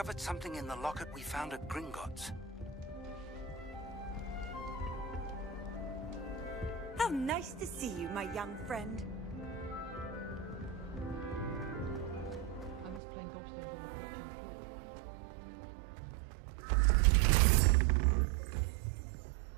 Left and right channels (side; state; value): left; drops out; at 13.0 s